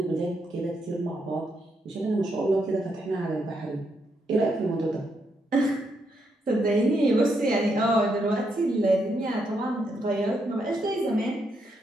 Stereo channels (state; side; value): normal; both; correlation 0.79